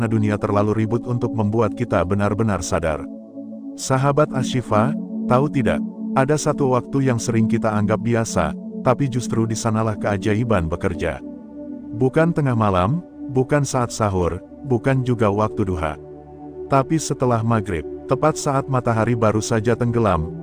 dunia terlalu ribut untuk membuat kita benar-benar sadar. Sahabat Asy-Syifa, tahu tidak, ada satu waktu yang sering kita anggap biasa, tapi justru di sanalah keajaiban bekerja. Bukan tengah malam, bukan saat sahur, bukan juga waktu duha. Tapi setelah maghrib, tepat saat matahari baru saja tenggelam,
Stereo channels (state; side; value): identical; both; correlation 1.00